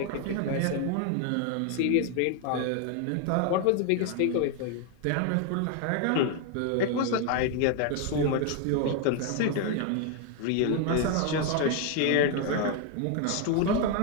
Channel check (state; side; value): different; both; correlation 0.01